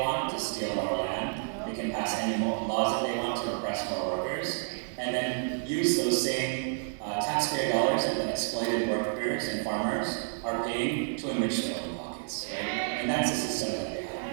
to steal more land, they can pass any more laws that they want to oppress more workers, and then use those same taxpayer dollars that the exploited workers and farmers are paying to enrich their own pockets. Right? And that's the system that they have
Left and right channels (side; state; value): left; silent; digital silence